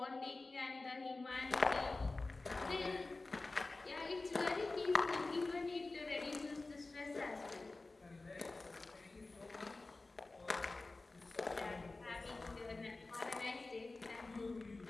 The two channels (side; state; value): right; quieter; 3.3 dB